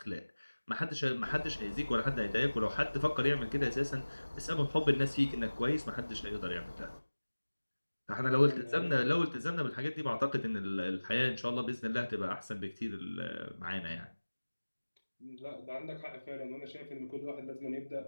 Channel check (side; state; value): both; inverted; correlation -1.00